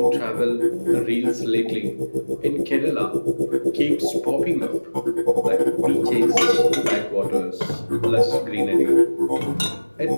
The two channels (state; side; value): inverted; both; correlation -1.00